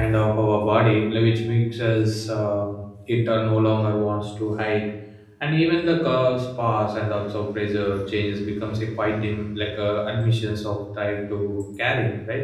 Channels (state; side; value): identical; both; correlation 1.00